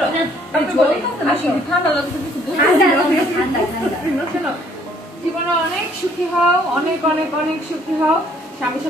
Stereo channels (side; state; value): both; normal; correlation 0.62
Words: জীবনে অনেক সুখী হও, অনেক অনেক অনেক সুখী হও। স্বামীর